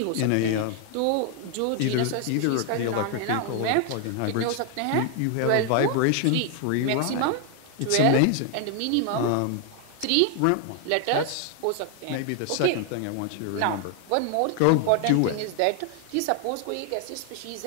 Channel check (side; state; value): both; different; correlation 0.00